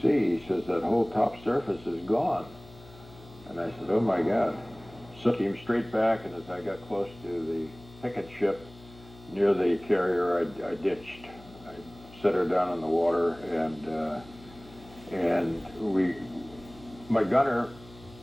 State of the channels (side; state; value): left; noise; hum, 21 dB below the sound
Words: he says, that whole top surface is gone. And I said, oh my God. So I came straight back, and as I got close to the picket ship near the carrier, I ditched. I set her down in the water, and my gunner,